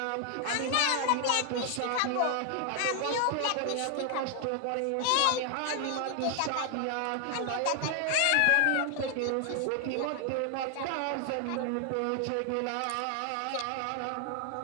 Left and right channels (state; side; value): different; both; correlation 0.00